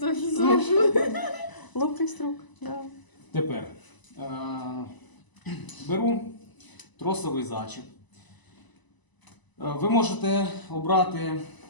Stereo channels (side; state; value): right; late; 1.0 ms